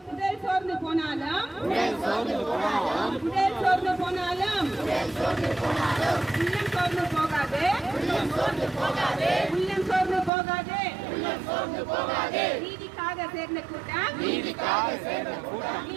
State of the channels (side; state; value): left; drops out; at 10.3 s